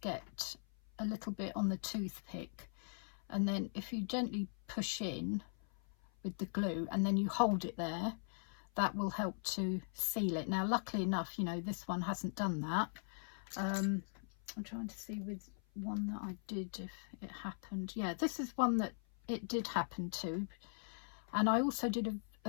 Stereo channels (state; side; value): silent; right; 51 dB below the other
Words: get a little bit on the toothpick, and then if you gently push in with the glue and then you hold it there, that will help to seal it. Now luckily enough, you know, this one hasn't done that. I'm trying to see with one that I did if it happened. Yeah, this is one that it did happen to, and I also did